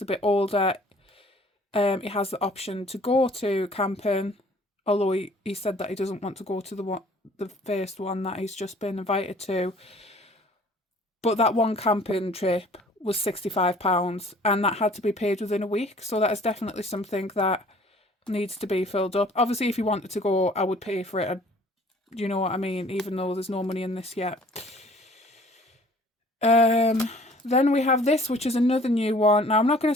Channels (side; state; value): both; normal; correlation 0.53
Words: a bit older, he has the option to go to camping, although he said that he doesn't want to go to the first one that he's just been invited to. But that one camping trip was £65, and that had to be paid within a week. So that is definitely something that needs to be filled up. Obviously, if you wanted to go, I would pay for it. You know what I mean? Even though there's no money in this yet. Then we have this, which is another new one. Now, I'm not going